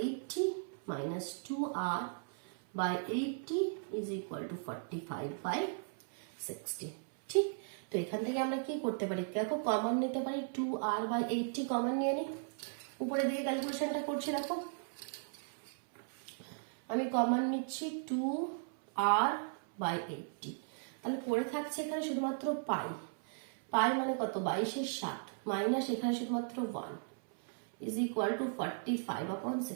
minus 2r/80 is equal to 45/60। ঠিক, তো এখান থেকে আমরা কি করতে পারি, দেখো কমন নিতে পারি, 2r/80 কমন নিয়ে নিই। উপরে দিকে ক্যালকুলেশনটা করছি, দেখো আমি কমন নিচ্ছি 2r/80, তাহলে পড়ে থাকছে এখানে শুধুমাত্র পাই। পাই মানে কত, 22/60 মাইনাস এখানে শুধুমাত্র 1 is equal to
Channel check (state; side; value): silent; left; 53 dB below the other